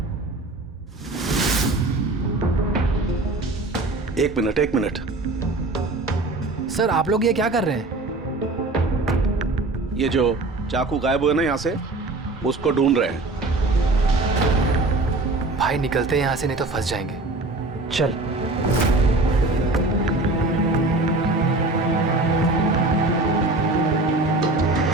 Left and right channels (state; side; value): quieter; left; 3.0 dB